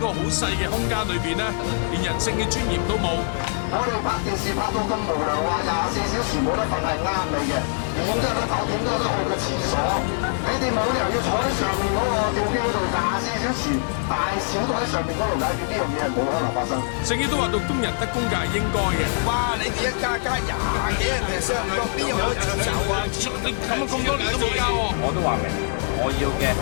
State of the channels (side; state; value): right; silent; 62 dB below the other